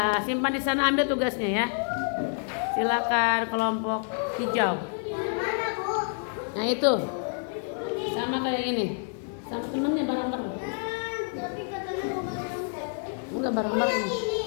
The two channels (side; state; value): right; silent; 59 dB below the other